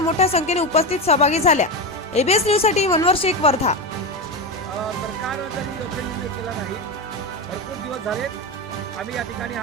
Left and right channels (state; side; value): normal; both; correlation 0.16